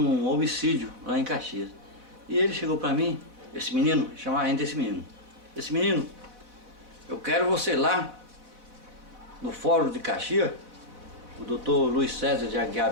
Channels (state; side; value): late; left; 4.0 ms